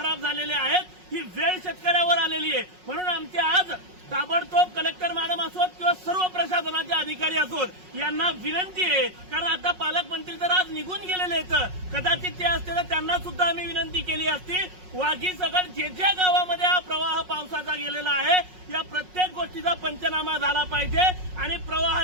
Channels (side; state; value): left; late; 5.5 ms